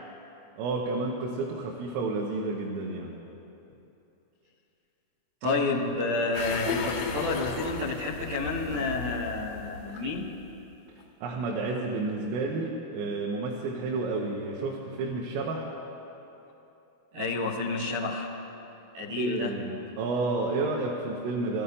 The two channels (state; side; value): late; left; 24 ms